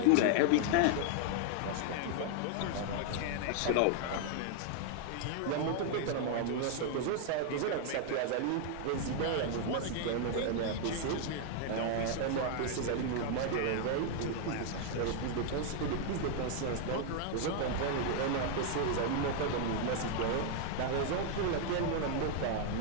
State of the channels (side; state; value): both; different; correlation 0.00